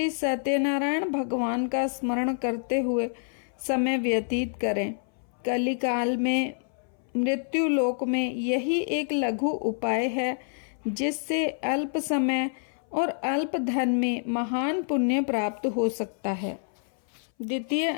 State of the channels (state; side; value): silent; right; 59 dB below the other